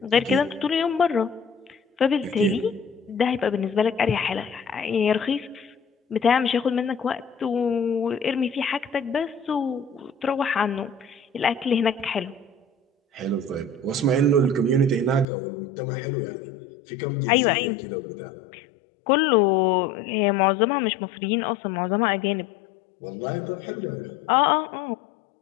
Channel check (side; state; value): right; drops out; at 15.2 s